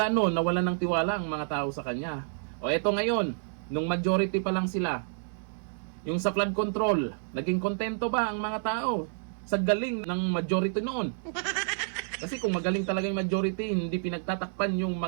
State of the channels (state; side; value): silent; left; digital silence